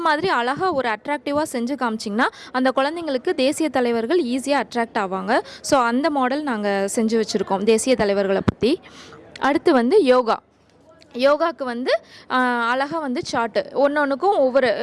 மாதிரி அழகாக ஒரு அட்ராக்டிவாக செஞ்சு காமிச்சிங்கன்னா அந்த குழந்தைங்களுக்கு தேசிய தலைவர்கள் ஈஸியாக அட்ராக்ட் ஆவாங்க. ஸோ அந்த மாடல் நாங்கள் செஞ்சு வச்சுருக்கோம் தேசிய தலைவர்களை பற்றி. அடுத்து வந்து யோகாவுக்கு வந்து அழகாக வந்து சார்ட்டு ஒன்றுக்கும் ஒவ்வொரு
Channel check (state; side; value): identical; both; correlation 1.00